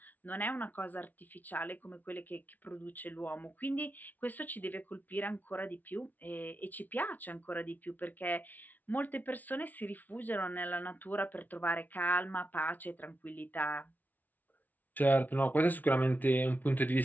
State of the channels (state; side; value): late; right; 0.079 ms